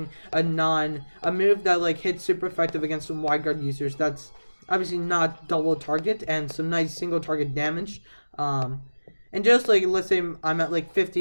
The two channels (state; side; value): inverted; both; correlation -1.00